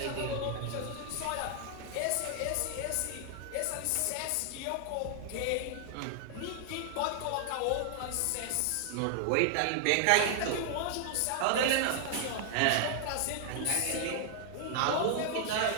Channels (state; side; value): different; both; correlation 0.00